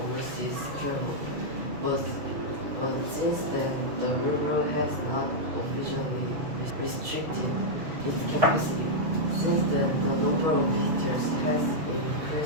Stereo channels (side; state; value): left; late; 6.4 ms